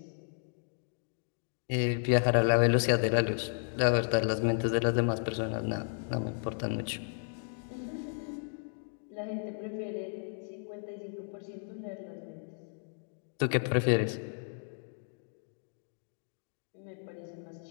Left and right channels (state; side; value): silent; right; digital silence